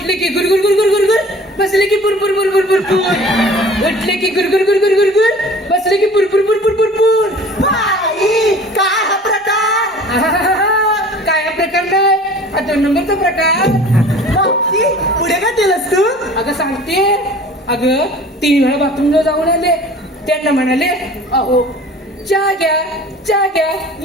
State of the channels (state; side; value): normal; both; correlation 0.45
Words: की गुरगुर गुरगुर गुरगुर, बसले की पुरपुर पुरपुर पुरपुर, उठले की गुरगुर गुरगुर गुरगुर, बसले की पुरपुर पुरपुर पुरपुर. बाई, काय हा प्रकार? आहाहाहा, काय हा प्रकार नाही. हा 2 नंबरचा प्रकार. मावशी, पुढे काय केलंस तू? अगं सांगते. अगं 3 वेळा बाथरूमला जाऊन आले. त्यांना म्हणाले अहो चहा घ्या